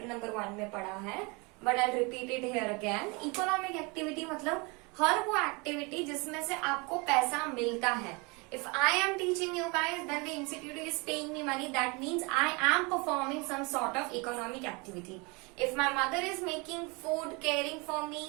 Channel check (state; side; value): quieter; left; 28.6 dB